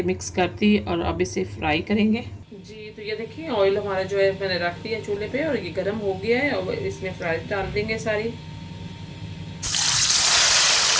मिक्स कर दी, और अब इसे फ्राई करेंगे। जी तो ये देखिए ऑयल हमारा जो है मैंने रख दिया चूल्हे पे और ये गर्म हो गया है, और इसमें फ्राइज डाल देंगे सारी।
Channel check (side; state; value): both; identical; correlation 1.00